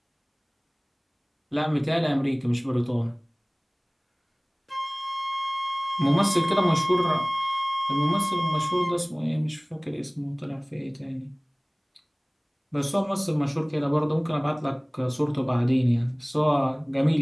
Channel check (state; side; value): identical; both; correlation 1.00